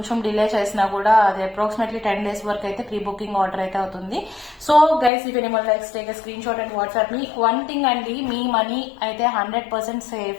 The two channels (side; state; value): right; drops out; at 5.1 s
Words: డిలే చేసినా కూడా అది అప్రాక్సిమేట్లీ 10 days వరకు అయితే ప్రీ బుకింగ్ ఆర్డర్ అయితే అవుతుంది. So guys, if anyone likes, take screen shot and WhatsApp me. One thing అండి, మీ మనీ అయితే 100%